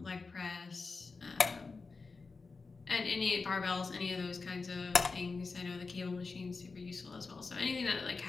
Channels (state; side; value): quieter; right; 4.2 dB